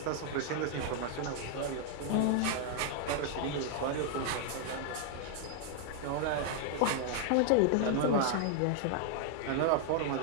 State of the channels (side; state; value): both; different; correlation 0.00